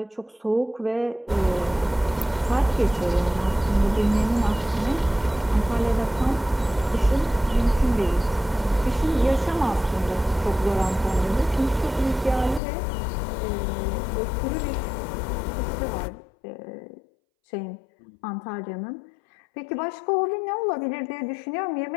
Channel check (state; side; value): drops out; right; at 12.6 s